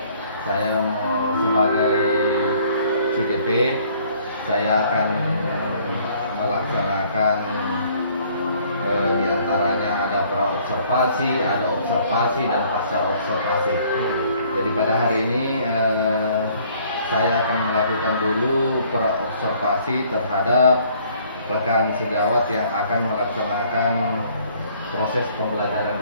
saya mau sebagai CGP, saya akan melaksanakan diantaranya ada pra-observasi, ada observasi dan pasca observasi. Jadi pada hari ini saya akan melakukan dulu pra-observasi terhadap rekan sejawat yang akan melaksanakan proses pembelajaran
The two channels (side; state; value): both; inverted; correlation -0.60